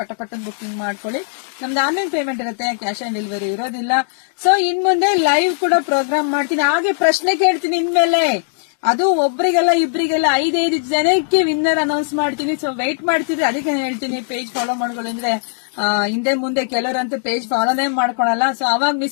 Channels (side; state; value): right; silent; digital silence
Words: ಬುಕಿಂಗ್ ಮಾಡ್ಕೊಳ್ಳಿ. ನಮ್ದು ಆನ್ಲೈನ್ ಪೇಮೆಂಟ್ ಇರುತ್ತೆ, ಕ್ಯಾಶ್ ಆನ್ ಡೆಲಿವರಿ ಇರೋದಿಲ್ಲ. ಸೊ ಇನ್ ಮುಂದೆ ಲೈವ್ ಕೂಡ ಪ್ರೋಗ್ರಾಮ್ ಮಾಡ್ತೀನಿ, ಹಾಗೆ ಪ್ರಶ್ನೆ ಕೇಳ್ತೀನಿ ಇನ್ಮೇಲೆ. ಅದು ಒಬ್ರಿಗೆಲ್ಲ ಇಬ್ರಿಗೆಲ್ಲ 5 ಜನಕ್ಕೆ ವಿನ್ನರ್ ಅನೌನ್ಸ್ ಮಾಡ್ತೀನಿ. ಸೊ ವೆಯ್ಟ್ ಮಾಡ್ತಿದ್ರೆ ಅದಕ್ಕೆ ಹೇಳ್ತೀನಿ, ಪೇಜ್ ಫಾಲೋ ಮಾಡ್ಕೊಳ್ಳಿ. ಅಂದ್ರೆ ಹಿಂದೆ ಮುಂದೆ ಕೆಲವರಂತೂ ಪೇಜ್ ಫಾಲೋನೇ ಮಾಡ್ಕೊಳಲ್ಲ. ಸೊ ಅವಾಗ